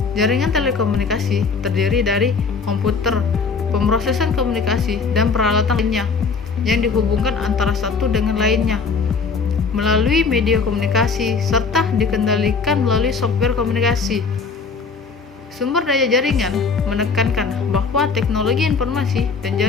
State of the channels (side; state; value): right; quieter; 4.9 dB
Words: Jaringan telekomunikasi terdiri dari komputer, pemrosesan komunikasi, dan peralatan lainnya yang dihubungkan antara satu dengan lainnya melalui media komunikasi serta dikendalikan melalui software komunikasi. Sumber daya jaringan menekankan bahwa teknologi informasi dan